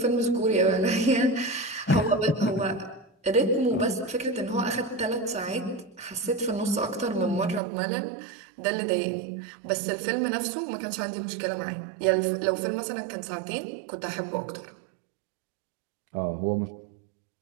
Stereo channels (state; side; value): drops out; left; at 7.6 s